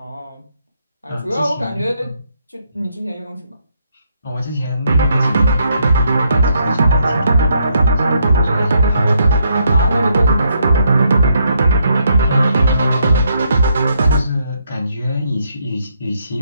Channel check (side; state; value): both; inverted; correlation -0.74